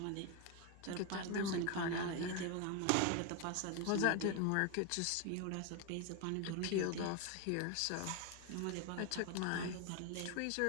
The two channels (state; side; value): different; both; correlation 0.01